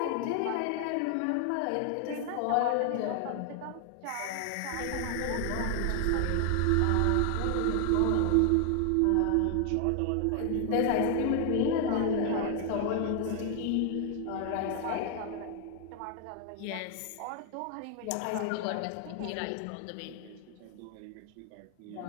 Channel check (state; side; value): different; both; correlation 0.00